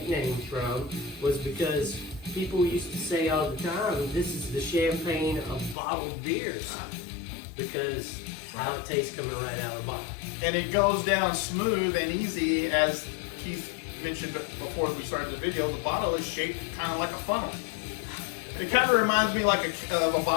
from was because people used to say all the time, "This is the champagne of bottled beers," because how it tastes coming right out of the bottle. And it goes down smooth and easy, as Keith mentioned before we started the video. The bottle is shaped kind of like a funnel. It kind of reminds me like of a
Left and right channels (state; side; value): drops out; right; at 5.8 s